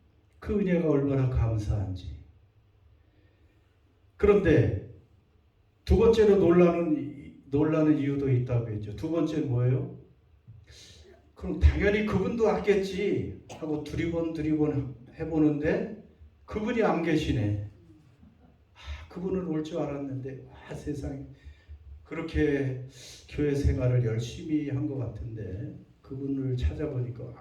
그 은혜가 얼마나 감사한지. 그런데 두 번째로 놀라는 이유도 있다고 했죠. 두 번째는 뭐예요? 그럼 당연히 그분도 왔겠지 하고 두리번 해보는데 그분이 안 계시네. 그분은 올 줄 알았는데 세상에 그렇게 교회 생활을 열심히 한 것 같은데 그분을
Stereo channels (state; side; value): identical; both; correlation 1.00